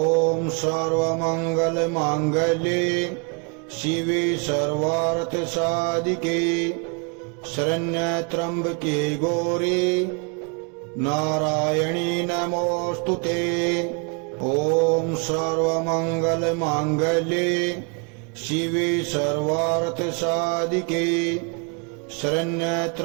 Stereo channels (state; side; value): quieter; left; 34.7 dB